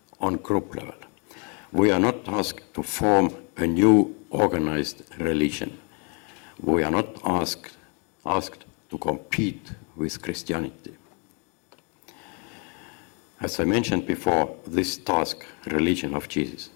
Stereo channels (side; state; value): right; quieter; 35.7 dB